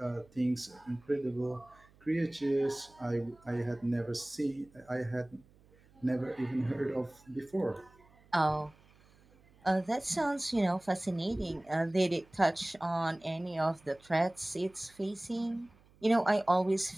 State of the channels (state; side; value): noise; right; hum, 29 dB below the sound